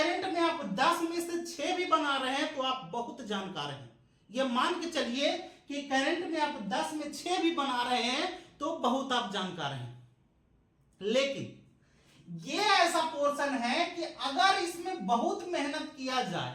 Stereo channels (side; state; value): both; identical; correlation 1.00